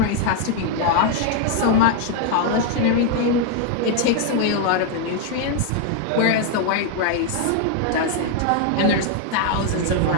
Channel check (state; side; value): different; both; correlation 0.00